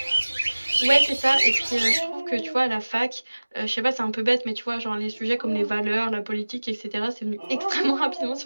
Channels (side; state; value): both; inverted; correlation -1.00